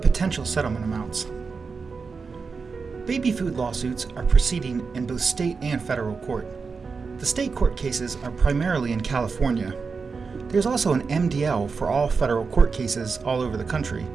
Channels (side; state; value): left; quieter; 4.9 dB